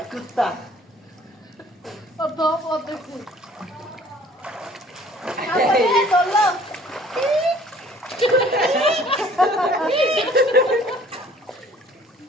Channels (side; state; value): both; normal; correlation 0.54